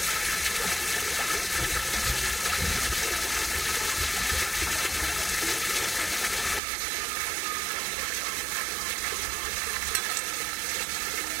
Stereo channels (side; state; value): left; drops out; at 6.6 s